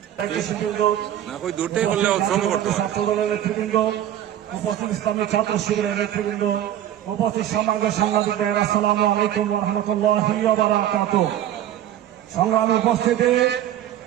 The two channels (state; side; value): quieter; left; 11.8 dB